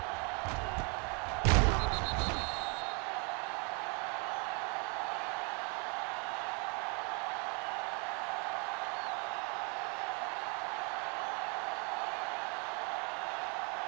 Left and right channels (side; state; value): left; quieter; 34.0 dB